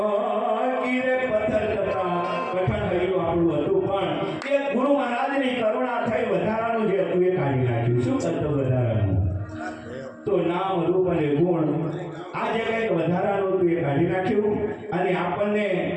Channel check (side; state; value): both; identical; correlation 1.00